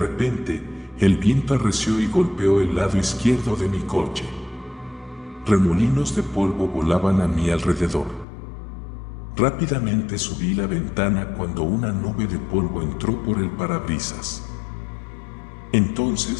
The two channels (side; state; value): right; drops out; at 8.2 s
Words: el viento arreció y golpeó el lado izquierdo de mi coche. Remolinos de polvo volaban a mi alrededor. Rápidamente subí la ventana cuando una nube de polvo entró por el parabrisas.